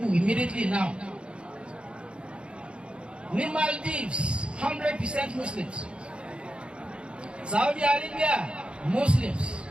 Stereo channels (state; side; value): late; left; 0.056 ms